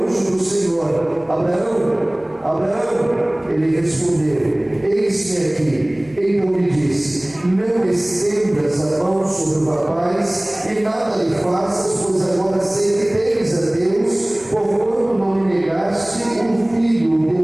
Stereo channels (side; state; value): left; noise; hum, 29 dB below the sound